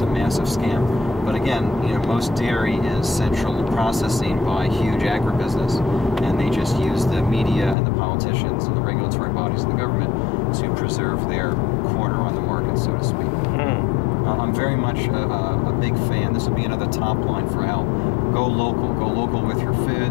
a massive scam. But again, most dairy is central processing by huge agribusiness, and they just use the media and the politicians and the regulatory bodies and the government to preserve their corner on the market, so to speak. I'm very much a big fan. This would be another top line for health. Go local. Go local with your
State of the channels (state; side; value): drops out; right; at 7.8 s